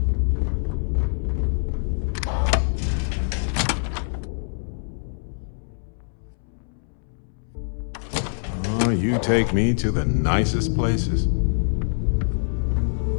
Oh, you take me to the nicest places.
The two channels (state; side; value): silent; right; 62 dB below the other